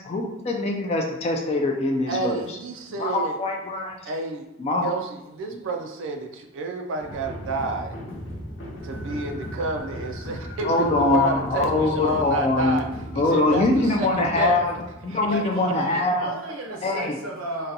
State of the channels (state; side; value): normal; both; correlation 0.22